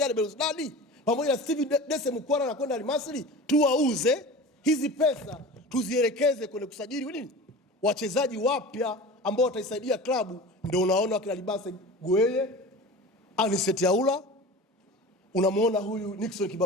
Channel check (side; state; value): both; normal; correlation 0.34